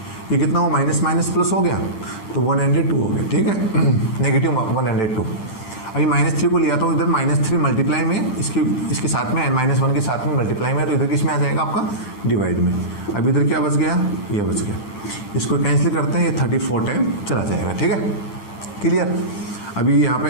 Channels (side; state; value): right; late; 9.9 ms